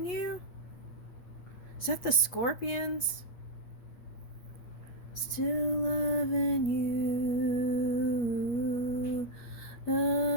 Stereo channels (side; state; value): right; late; 8.4 ms